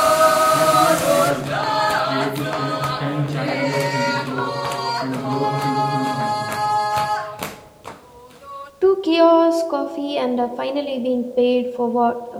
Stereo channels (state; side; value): identical; both; correlation 1.00